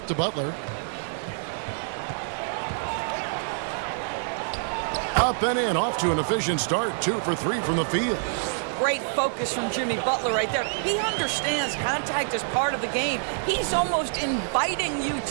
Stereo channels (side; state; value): left; silent; 61 dB below the other